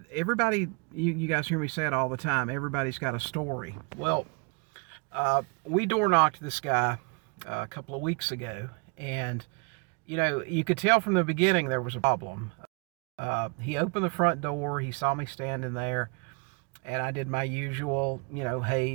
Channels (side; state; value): left; quieter; 34.2 dB